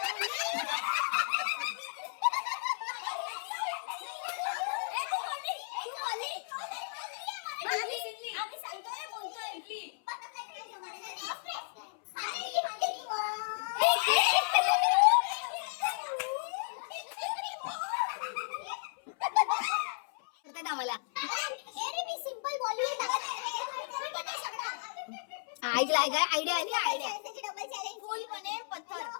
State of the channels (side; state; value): right; silent; 55 dB below the other